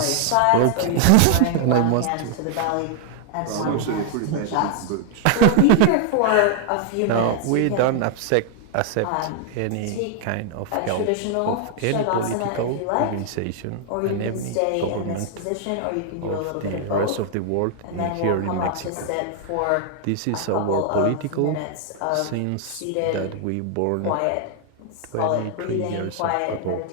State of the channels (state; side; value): different; both; correlation 0.00